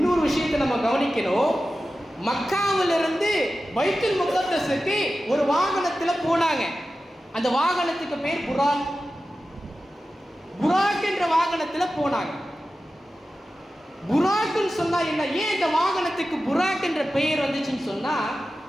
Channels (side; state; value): both; normal; correlation 0.94